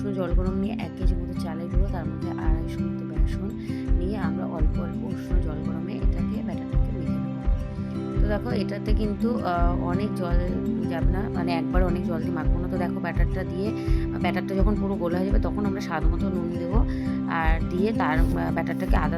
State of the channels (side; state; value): both; identical; correlation 1.00